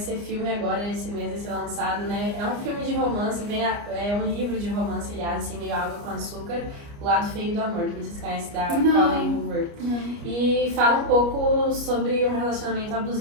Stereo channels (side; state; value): left; late; 29 ms